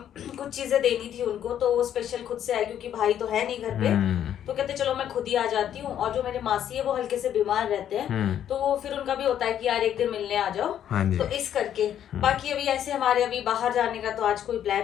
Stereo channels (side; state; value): right; quieter; 10.2 dB